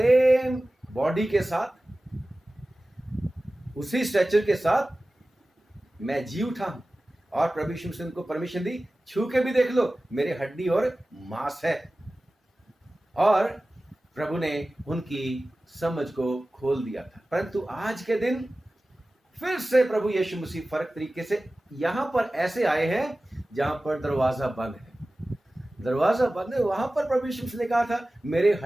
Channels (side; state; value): both; normal; correlation 0.96